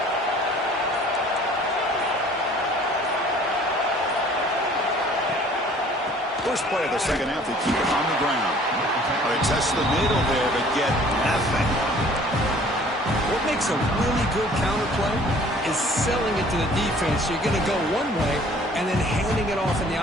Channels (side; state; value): both; normal; correlation 0.53